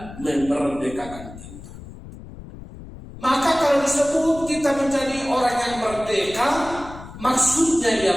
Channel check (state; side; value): noise; left; rumble, 15 dB below the sound